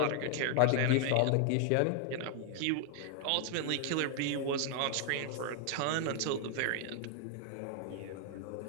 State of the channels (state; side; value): different; both; correlation 0.00